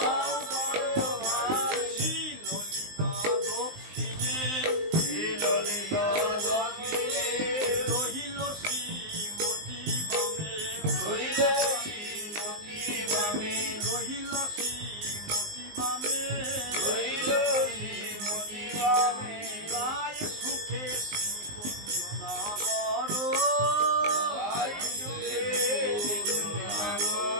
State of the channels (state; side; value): late; left; 19 ms